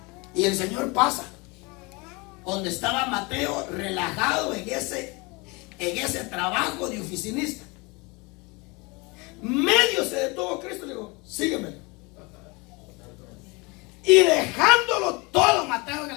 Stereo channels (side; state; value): right; quieter; 27.0 dB